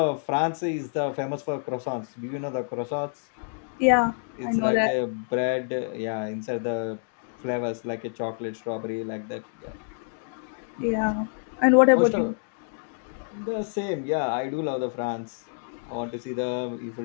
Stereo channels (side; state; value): right; silent; digital silence